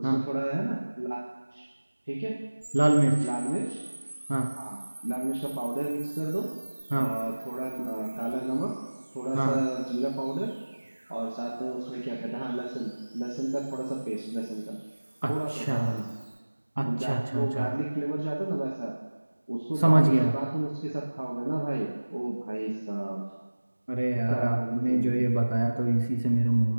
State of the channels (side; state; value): both; inverted; correlation -1.00